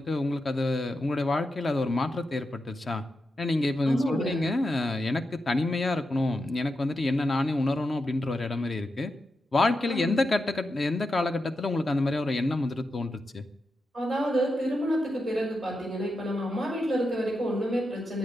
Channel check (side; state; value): both; normal; correlation 0.88